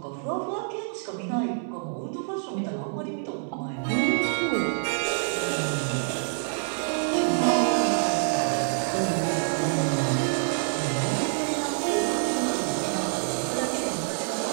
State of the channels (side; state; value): left; silent; 60 dB below the other